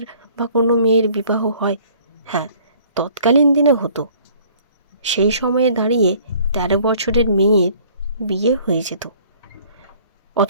বা কোনো মেয়ের বিবাহ হয়? হ্যাঁ, তৎকালীন দিনে হতো। সেই সময়ে দাঁড়িয়ে 13 বছরের মেয়ের বিয়ে হয়ে যেত,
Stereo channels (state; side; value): inverted; both; correlation -0.55